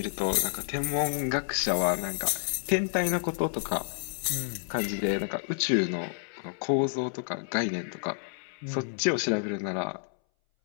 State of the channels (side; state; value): right; silent; 58 dB below the other